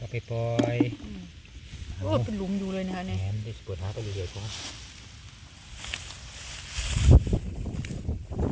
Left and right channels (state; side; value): identical; both; correlation 1.00